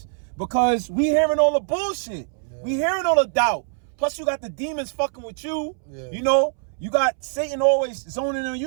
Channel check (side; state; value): left; silent; 63 dB below the other